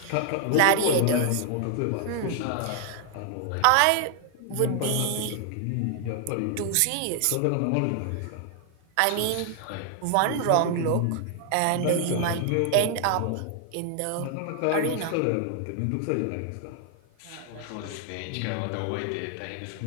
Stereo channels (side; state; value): both; different; correlation 0.00